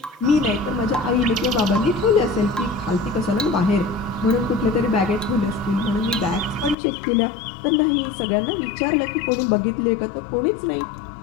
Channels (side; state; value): right; drops out; at 6.8 s